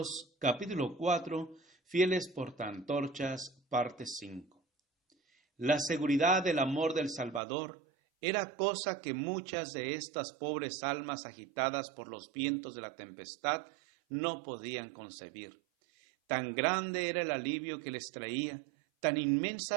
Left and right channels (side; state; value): left; drops out; at 7.4 s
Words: capítulo 4, fieles portaantorchas, parte 5. La seguridad del amor del Salvador era cosa que muchas de estas pobres almas agitadas por los vientos de la tempestad no podían concebir. Tan grande era el alivio que les traía, tan